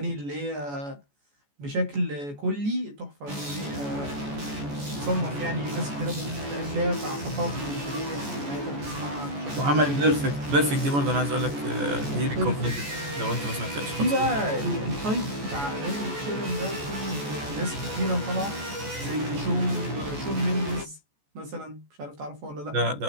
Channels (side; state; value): left; late; 14 ms